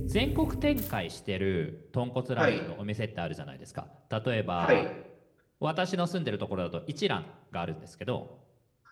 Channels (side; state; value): both; identical; correlation 1.00